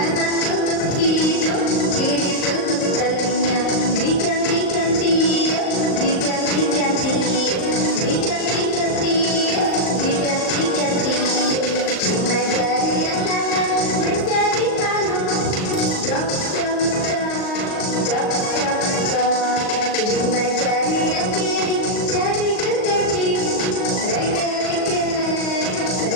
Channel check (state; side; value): late; right; 38 ms